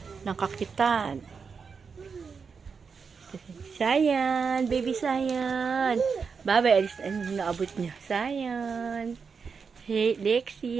kakitan. Sayan, baby Sayan. Bye-bye, alis na naabot niya. Sayan. Hey,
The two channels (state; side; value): quieter; left; 5.6 dB